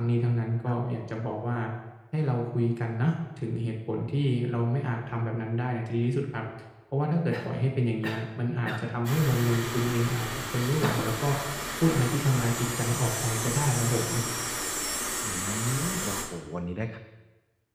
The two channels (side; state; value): both; identical; correlation 1.00